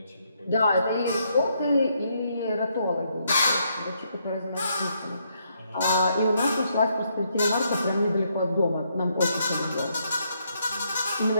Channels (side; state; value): both; inverted; correlation -0.75